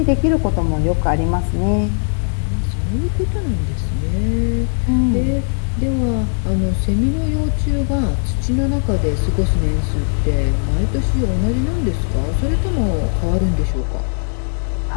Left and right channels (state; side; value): silent; right; 63 dB below the other